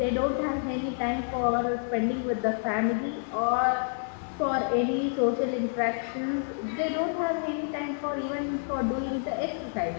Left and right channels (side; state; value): right; silent; digital silence